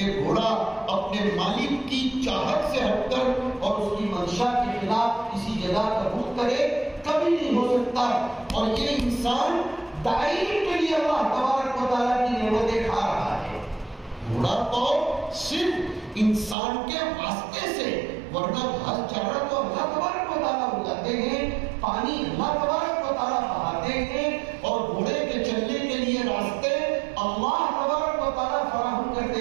گھوڑا اپنے مالک کی چاہت سے ہٹ کر اور اس کی منشا کے خلاف کسی جگہ کا رخ کرے، کبھی نہیں ہو سکتا. اور یہ انسان دائم کے لیے اللہ تبارک و تعالیٰ کی نعمتیں کھا رہا ہے. گھوڑا تو صرف انسان کے واسطے سے، ورنہ گھاس چارہ تو اللہ تبارک و تعالیٰ اگاتے ہیں، پانی اللہ تبارک و تعالیٰ بہاتے ہیں، اور گھوڑے کے چلنے کے لیے راستے اللہ تبارک و تعالیٰ فراہم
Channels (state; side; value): drops out; left; at 16.6 s